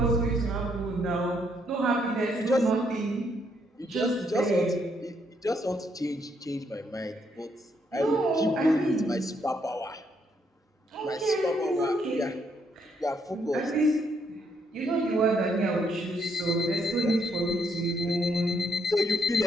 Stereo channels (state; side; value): normal; both; correlation 0.73